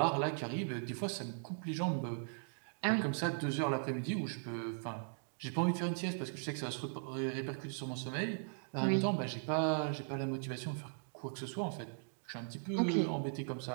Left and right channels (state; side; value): silent; left; digital silence